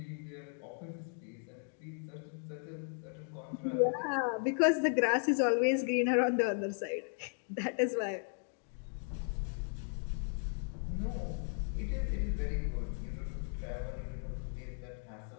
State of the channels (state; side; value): silent; right; 54 dB below the other